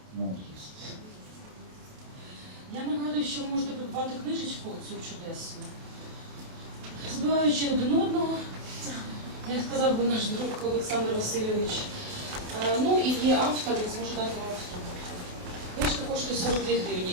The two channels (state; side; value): late; left; 28 ms